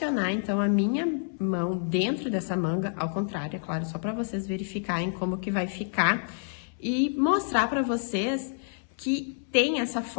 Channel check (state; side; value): silent; right; 59 dB below the other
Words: então, a minha mão dentro dessa manga, ao contrário, é claro, só para vocês verificarem como que vai ficar e mostrar para vocês que tem essa